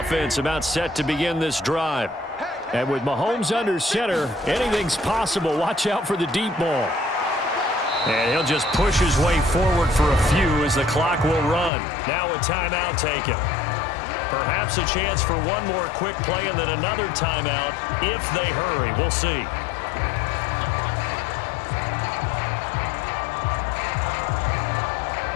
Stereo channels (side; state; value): right; drops out; at 11.7 s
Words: about set to begin this drive. And with Mahomes under center, anything's possible. Watch out for the deep ball. And he'll just push his way forward for a few as the clock will run. Now a timeout taken. Perhaps a chance for one more quick play and then another timeout if they hurry. We'll see.